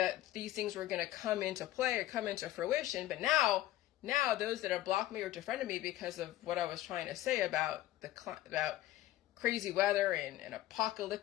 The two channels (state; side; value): quieter; right; 14.9 dB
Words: these things were going to come into play or come into fruition. But now those that have blocked me or defriended me because of what I was trying to say about about crazy weather and